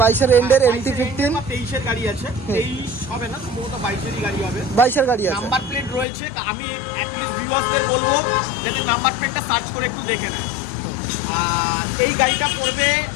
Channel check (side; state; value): right; drops out; at 6.1 s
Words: এর এন্ডের MT-15, 23 এর গাড়ি আছে, 23 হবে না সম্ভবত 22 এর গাড়ি হবে, 22 এর গাড়ি আছে, নাম্বার প্লেট রয়েছে। আমি অ্যাটলিস্ট ভিউয়ারদের বলবো যাতে নাম্বার প্লেটটা সার্চ করে একটু দেখে নেয়। এই গাড়িটা পড়বে